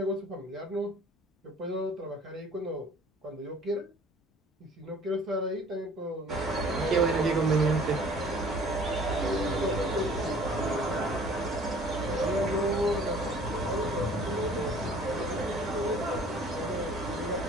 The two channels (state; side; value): normal; both; correlation 0.51